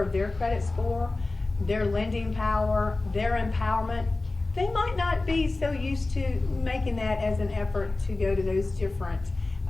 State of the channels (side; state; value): right; quieter; 3.2 dB